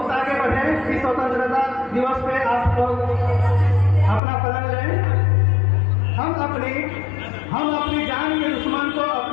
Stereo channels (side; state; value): right; drops out; at 4.2 s